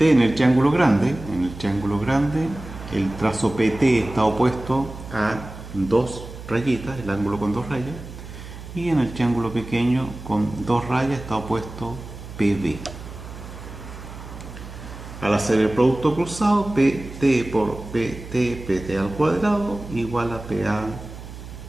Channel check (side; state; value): right; noise; hum, 13 dB below the sound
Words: en el triángulo grande, el trazo PT está opuesto a dos rayitas, el ángulo con dos rayas, y en el triángulo pequeño con dos rayas está opuesto PB. Al hacer el producto cruzado, PT por PT, PT al cuadrado, igual a PA